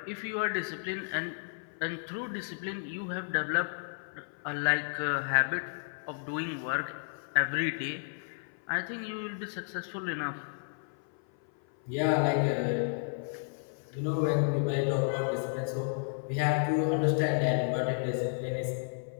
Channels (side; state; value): right; silent; 56 dB below the other